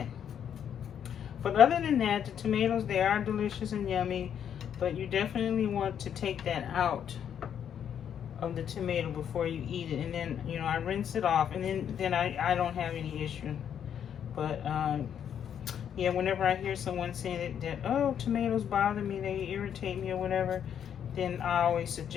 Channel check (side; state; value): right; quieter; 8.8 dB